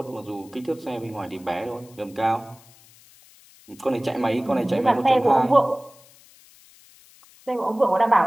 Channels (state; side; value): noise; left; hiss, 26 dB below the sound